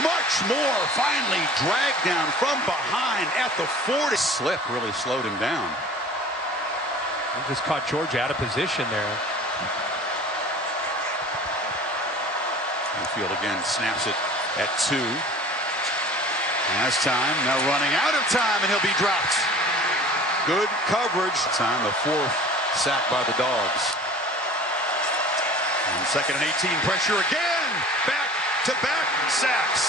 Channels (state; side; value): normal; both; correlation 0.44